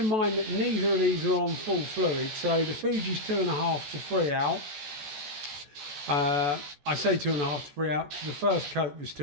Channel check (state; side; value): late; left; 14 ms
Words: mind that neither of these are on full fluid, so the Fuji's 2.5 to 3 out. I say 2.5 to 3 out because the first coat was